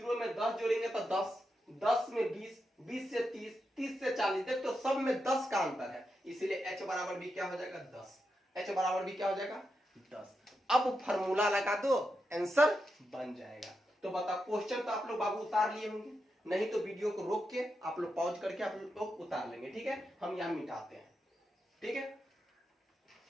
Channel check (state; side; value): normal; both; correlation 0.86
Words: में 10 जोड़ेंगे तो 10, 10 में 20, 20 से 30, 30 से 40, देखो तो सब में 10 का अंतर है, इसीलिए H बराबर भी क्या हो जाएगा? 10। H बराबर भी क्या हो जाएगा? 10। अब फॉर्मूला लगा दो, आंसर बन जाएगा। तो बताओ, क्वेश्चन तो आप लोग बाबू उतार लिए होंगे, नहीं तो वीडियो को रोक के आप लोग पॉज करके आप लोग उतार लेंगे, ठीक है। हम यहां मिटाते हैं, ठीक है।